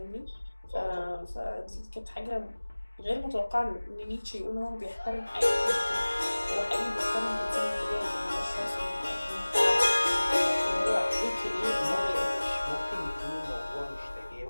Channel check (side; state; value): both; inverted; correlation -1.00